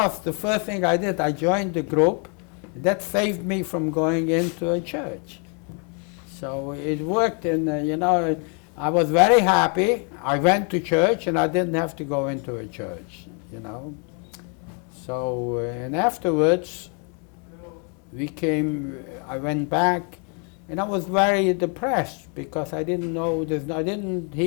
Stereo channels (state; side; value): quieter; right; 38.1 dB